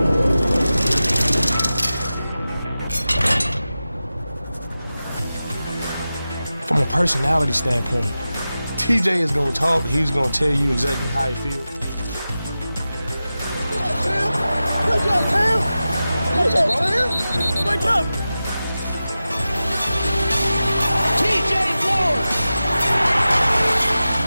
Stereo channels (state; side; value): inverted; both; correlation -0.94